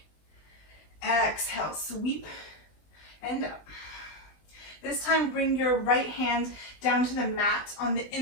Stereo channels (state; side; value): late; right; 20 ms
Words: Exhale, sweep and up. This time, bring your right hand down to the mat on the